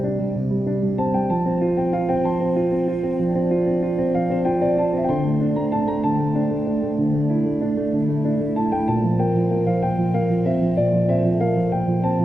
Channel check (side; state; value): both; normal; correlation 0.90